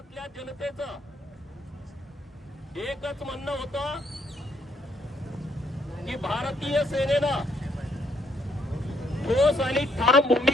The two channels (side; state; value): both; normal; correlation 0.71